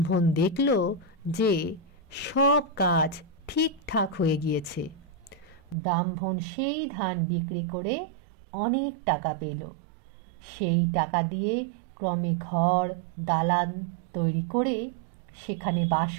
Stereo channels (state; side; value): drops out; left; at 5.8 s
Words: দেখল যে সব কাজ ঠিকঠাক হয়ে গিয়েছে। ব্রাহ্মণ সেই ধান বিক্রি করে অনেক টাকা পেল। সেই টাকা দিয়ে ক্রমে ঘর দালান তৈরি করে সেখানে বাস